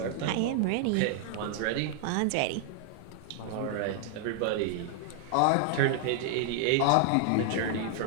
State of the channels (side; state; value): both; different; correlation 0.00